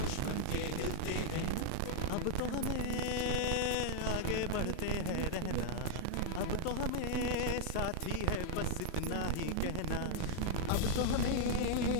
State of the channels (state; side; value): different; both; correlation -0.01